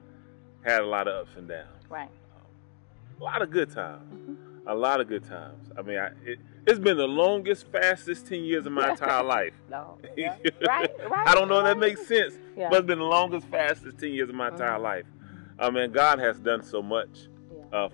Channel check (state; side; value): silent; right; digital silence